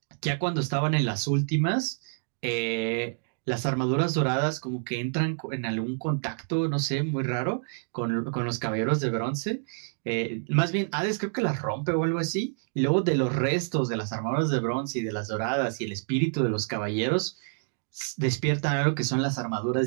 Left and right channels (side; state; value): left; silent; digital silence